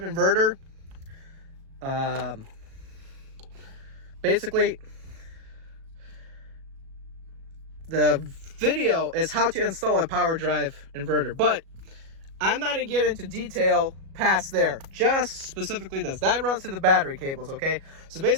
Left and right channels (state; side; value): late; left; 37 ms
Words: inverter. Basically, the video is how to install a Powerdrive inverter, but I'm not gonna get into detail past there, just specifically this. That runs through the battery cables, okay? So